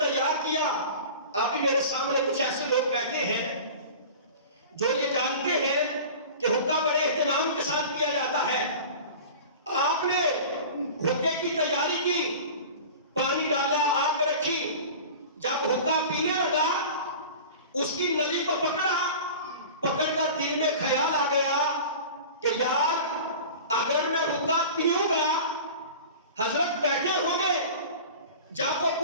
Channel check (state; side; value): inverted; both; correlation -0.37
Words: کیا۔ ابھی میرے سامنے کچھ ایسے لوگ بیٹھے ہیں جو یہ جانتے ہیں کہ حکا بڑے اہتمام کے ساتھ کیا جاتا ہے۔ آپ نے حکے کی تیاری کی، پانی ڈالا، آگ رکھی، جب حکا پینے لگا اس کی نلی کو پکڑا، پکڑ کر دل میں خیال آ گیا کہ یار اگر میں حکا پیوں گا حضرت بیٹھے ہوں گے، جب وہ